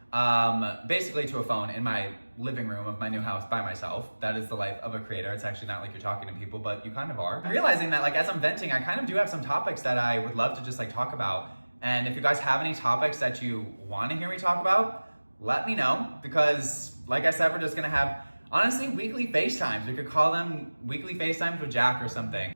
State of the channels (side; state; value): both; inverted; correlation -1.00